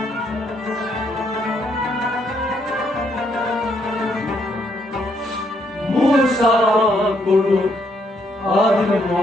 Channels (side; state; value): both; normal; correlation 0.72